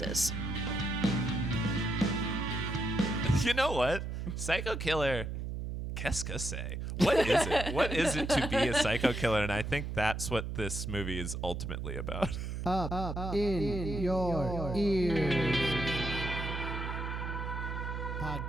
You know what? Psycho killer. Qu'est-ce que c'est? What is it? What is it to be a psycho killer? And I think that's what this movie is ultimately about. Up in your ears.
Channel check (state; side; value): noise; right; hum, 4 dB below the sound